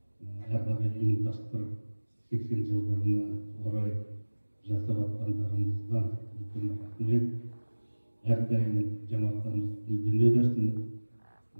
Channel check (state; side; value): inverted; both; correlation -1.00